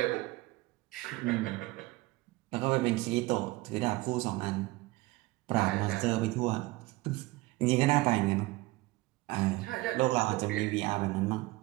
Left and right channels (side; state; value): left; quieter; 20.8 dB